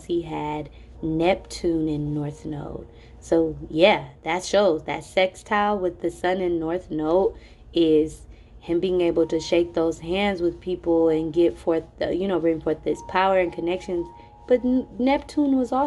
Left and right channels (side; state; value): both; identical; correlation 1.00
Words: he had Neptune in North Node. So, yeah, that shows that sextile with the sun in North Node is him being able to shake those hands with people and get forth, bring forth this power and connections. But Neptune was